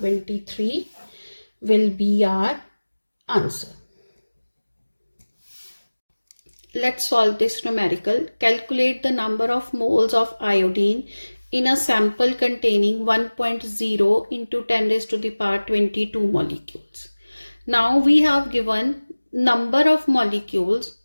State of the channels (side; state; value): both; inverted; correlation -1.00